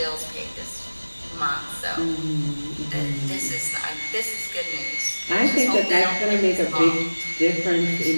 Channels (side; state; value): both; inverted; correlation -1.00